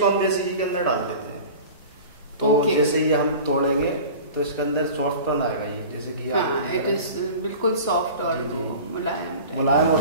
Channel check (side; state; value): both; inverted; correlation -0.38